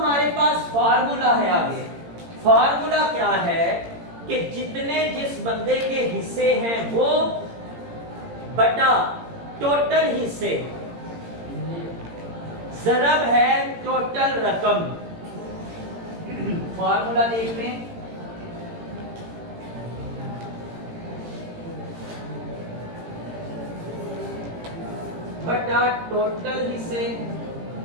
पास फार्मूला है आगे। फार्मूला क्या है कि जितने जिस बंदे के हिस्से हैं वो बटा टोटल हिस्से ज़रब है टोटल रकम। फार्मूला देख लें, बटा टोटल हिस्से।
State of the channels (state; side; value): late; left; 18 ms